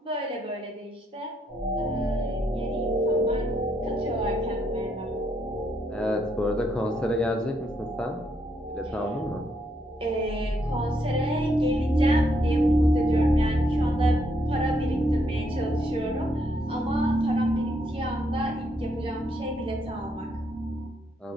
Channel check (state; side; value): normal; both; correlation 0.75